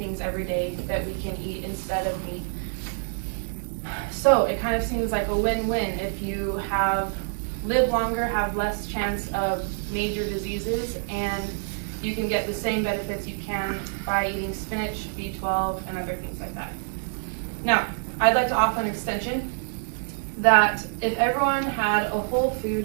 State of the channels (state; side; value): silent; left; 61 dB below the other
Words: every day that we can eat instead of meat. So it kind of seems like a win-win. If you live longer, have less chance of major diseases, and you can get the same benefits you can by eating spinach, B12, and other things like that. Now, I'd like to offer an extension that if everyone had a whole